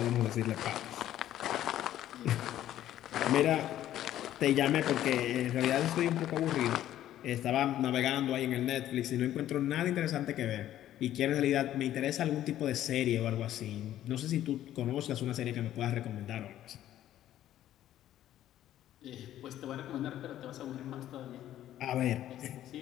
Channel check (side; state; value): right; quieter; 12.5 dB